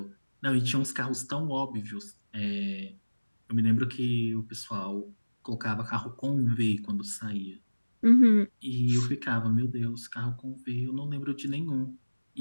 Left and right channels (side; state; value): both; inverted; correlation -1.00